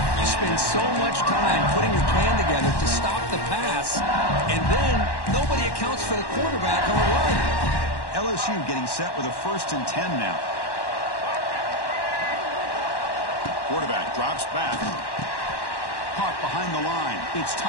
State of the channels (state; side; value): late; right; 1.1 ms